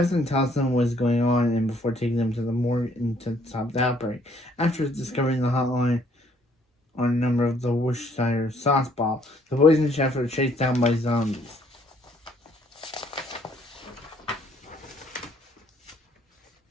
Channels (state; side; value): normal; both; correlation 0.64